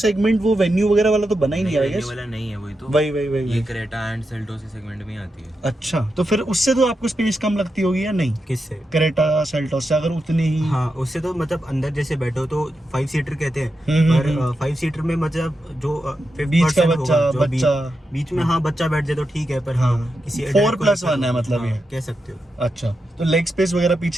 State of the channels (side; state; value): both; normal; correlation 0.87